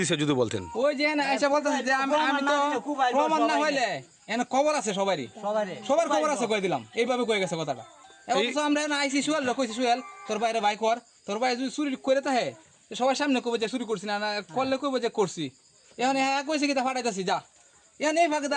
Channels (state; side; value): identical; both; correlation 1.00